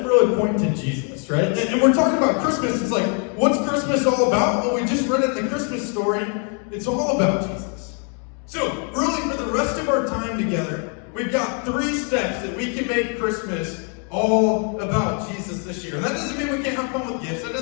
really point to Jesus, right? And we're talking about Christmas. It's like, what's Christmas all about? Well, we just read it in the Christmas story. It's all about Jesus. So, really, for the rest of our time together, we've got 3 steps that we can make Christmas all about Jesus this year. And that doesn't mean we can't have fun with gifts. That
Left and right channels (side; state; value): right; quieter; 40.0 dB